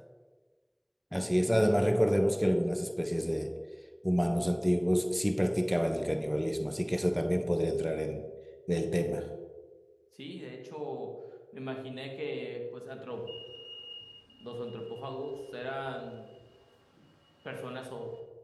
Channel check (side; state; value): both; identical; correlation 1.00